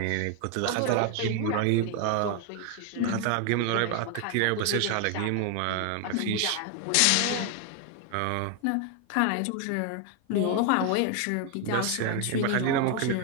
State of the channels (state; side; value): different; both; correlation 0.01